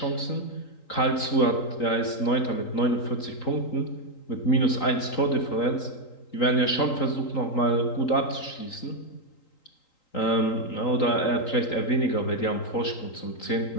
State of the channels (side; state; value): right; late; 3.8 ms